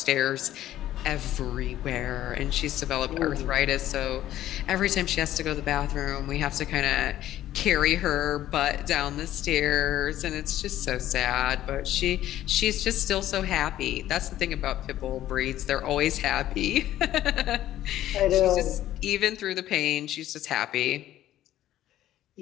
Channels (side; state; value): right; quieter; 13.2 dB